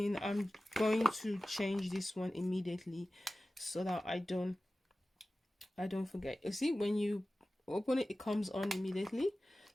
I'm going to change this one immediately so that I don't forget. You see, when you open it, it comes on immediately.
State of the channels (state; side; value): normal; both; correlation 0.96